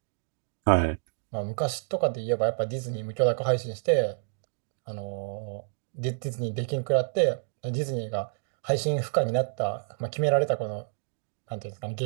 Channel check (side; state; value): left; silent; digital silence